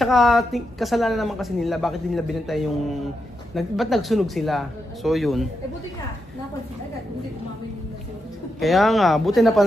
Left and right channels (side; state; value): both; normal; correlation 0.85